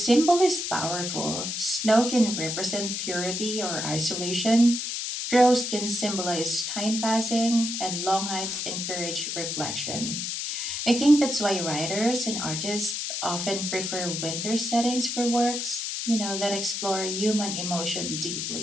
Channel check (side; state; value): left; noise; hiss, 3 dB below the sound